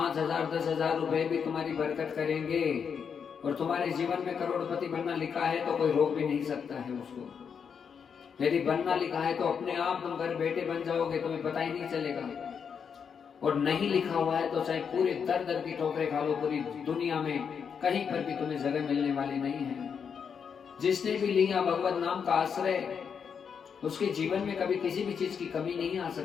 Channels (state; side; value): quieter; right; 6.8 dB